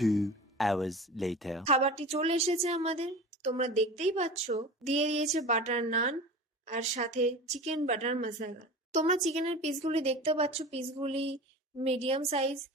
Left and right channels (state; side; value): normal; both; correlation 0.34